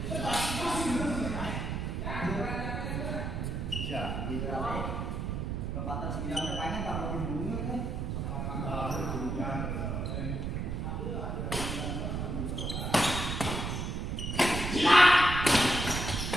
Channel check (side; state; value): right; noise; rumble, 2 dB below the sound